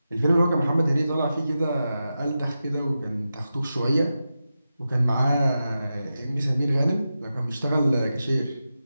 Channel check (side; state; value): both; inverted; correlation -0.91